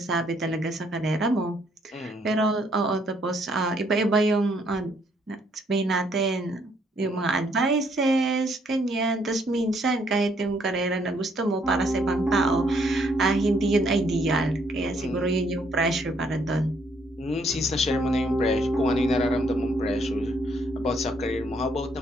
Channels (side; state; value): both; normal; correlation 0.69